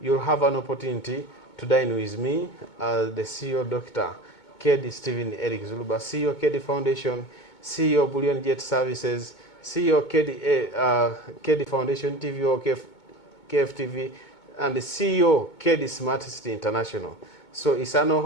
you'll have an opportunity to dine with me, the CEO Dr. Keddi Stephen Erick Zuluba, CEO Keddi Foundation, CEO Bullion Jet Services, CEO Keddi Foundation TV or KFTV, and the CEO Keddi Smart City International. So it's an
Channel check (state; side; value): late; right; 2.2 ms